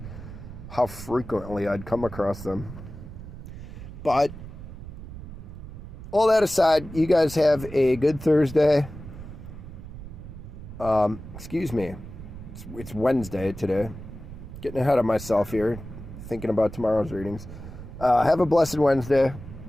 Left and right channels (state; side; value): noise; right; rumble, 12 dB below the sound